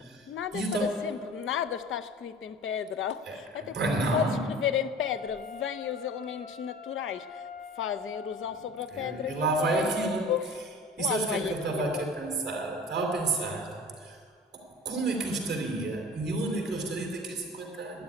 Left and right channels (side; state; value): both; normal; correlation 0.40